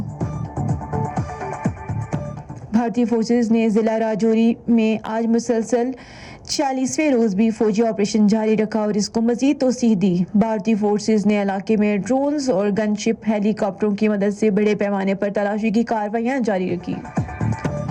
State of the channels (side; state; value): both; identical; correlation 1.00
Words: بھارتی فورسز نے ضلع راجوری میں آج مسلسل 46ویں روز بھی فوجی آپریشن جاری رکھا اور اس کو مزید توسیع دی۔ بھارتی فورسز نے علاقے میں ڈرونز اور گن شپ ہیلی کاپٹروں کی مدد سے بڑے پیمانے پر تلاشی کی کارروائیاں جاری رکھی۔